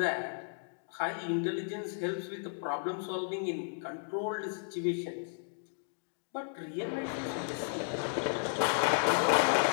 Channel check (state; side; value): silent; right; digital silence